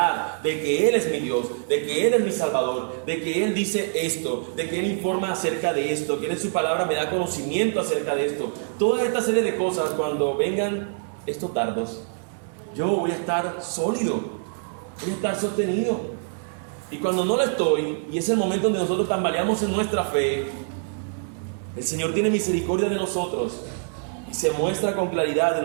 de que Él es mi Dios, de que Él es mi Salvador, de que Él dice esto, de que Él informa acerca de esto, que Él en su palabra me da conocimiento acerca de esto. Toda esta serie de cosas, cuando vengan estos dardos, yo voy a estar sólido, voy a estar sostenido. Y cuando no lo estoy, y es el momento donde nosotros tambaleamos en nuestra fe, el Señor tiene misericordia de nosotros y se muestra con claridad en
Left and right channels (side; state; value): left; silent; digital silence